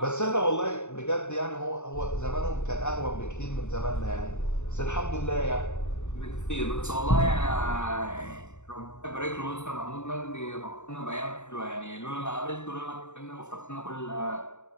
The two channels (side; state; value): right; late; 0.83 ms